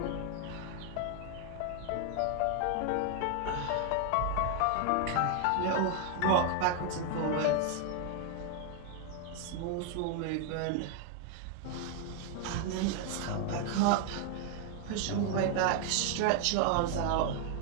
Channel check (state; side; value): different; both; correlation 0.00